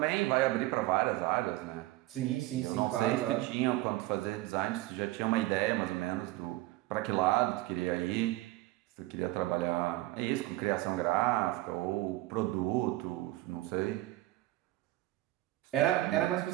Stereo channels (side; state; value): left; quieter; 17.8 dB